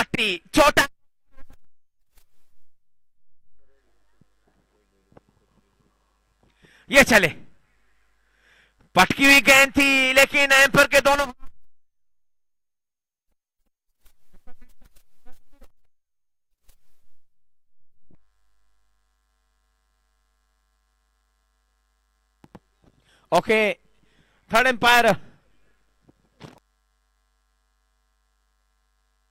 छोटा, ये चले, पटकी हुई गेंद थी लेकिन एम्पर के दोनों ओके, थर्ड एम्पायर।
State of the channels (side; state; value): both; identical; correlation 1.00